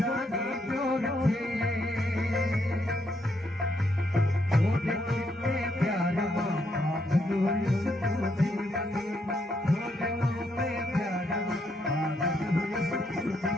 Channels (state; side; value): normal; both; correlation 0.76